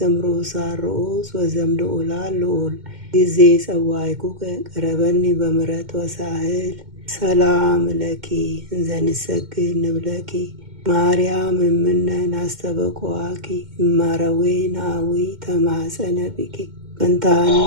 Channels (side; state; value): left; late; 2.1 ms